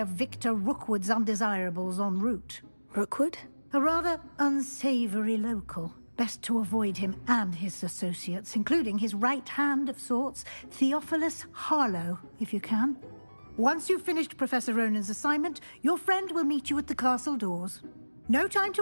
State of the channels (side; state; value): both; inverted; correlation -1.00